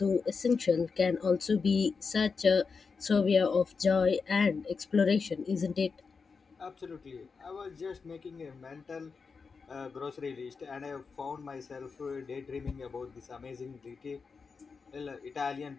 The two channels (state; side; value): quieter; right; 5.0 dB